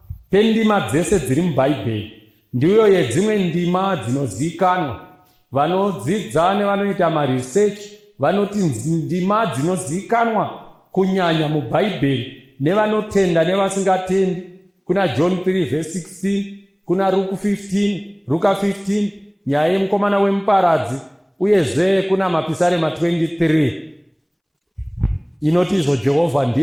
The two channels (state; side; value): identical; both; correlation 1.00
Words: pendima dzese dziri mubhaibheri ndiyo yedzimwe ndima dzinozivikanwa. Vanodzidza nevanoita maresearch vanoti ndima dzinozivikanwa kunyanya mubhaibheri nevanotenda nevasingatendi. Kuna John 3 verse 16, kuna Luka 15, nyaya yemukomana wemuparadzi, uyezve kuna mapisarema 23 inoti izvo, Jehovha